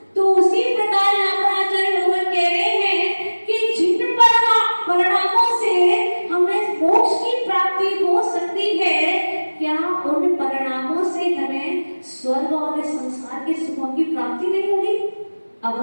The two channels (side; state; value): both; inverted; correlation -1.00